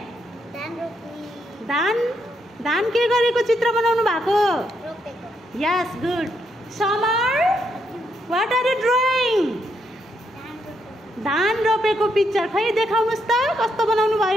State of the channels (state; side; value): normal; both; correlation 0.78